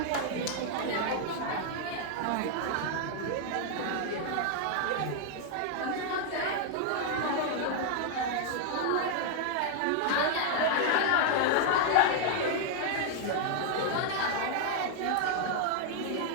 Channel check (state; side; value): different; both; correlation 0.00